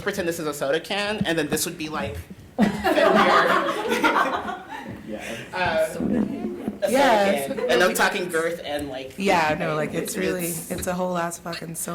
pretend this is a soda can, and then this would be like Yes. and I'm talking girth and like. Yeah, no, like it's a whole ass fucking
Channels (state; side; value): identical; both; correlation 1.00